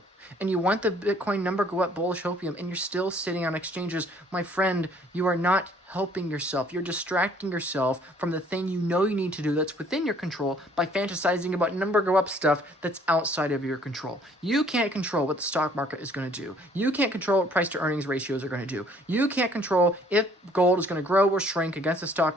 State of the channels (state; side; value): normal; both; correlation 0.59